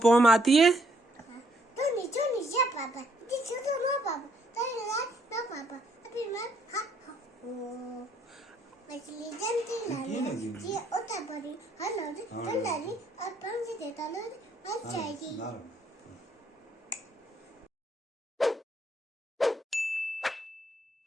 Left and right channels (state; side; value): normal; both; correlation 0.69